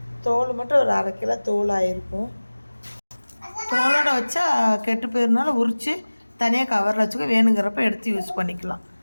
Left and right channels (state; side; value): inverted; both; correlation -1.00